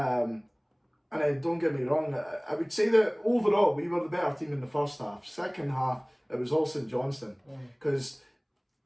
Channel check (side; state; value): both; identical; correlation 1.00